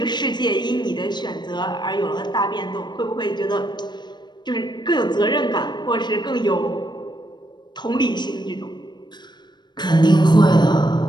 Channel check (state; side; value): late; right; 0.21 ms